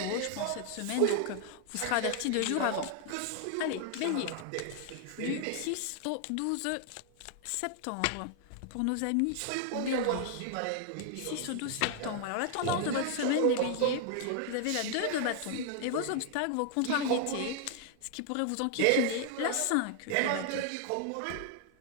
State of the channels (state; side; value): different; both; correlation 0.00